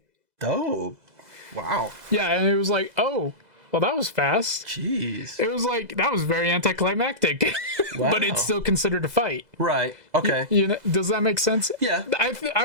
Dope. Wow. Yeah, and it was like, oh, well, that was fast. Jeez. It was like that was very anticlimactic, but it's still considered a fight. Right. Okay. You know, does that make sense? Yeah.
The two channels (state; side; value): late; left; 2.0 ms